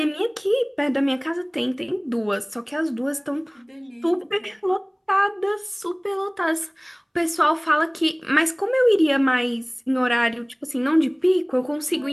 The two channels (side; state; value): both; identical; correlation 1.00